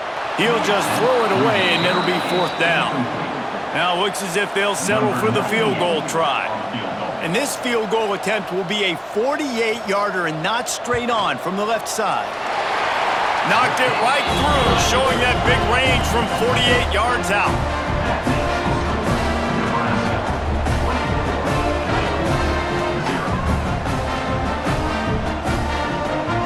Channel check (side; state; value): both; identical; correlation 1.00